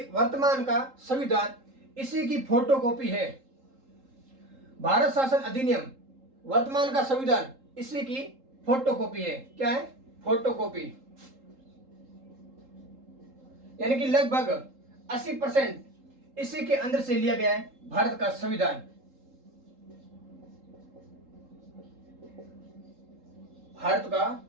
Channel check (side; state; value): left; late; 3.8 ms